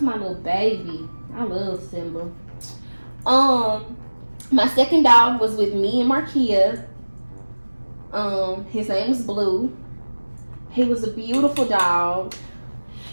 my little baby. I love Simba. My second dog was with me and Markia. His name was Blue. He was a beautiful dog.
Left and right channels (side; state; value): both; inverted; correlation -1.00